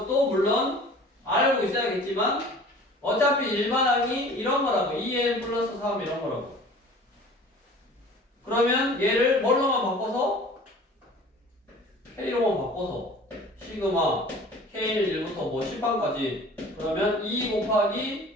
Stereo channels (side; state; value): both; normal; correlation 0.45